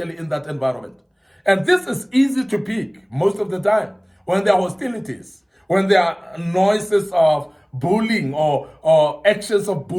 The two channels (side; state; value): both; identical; correlation 1.00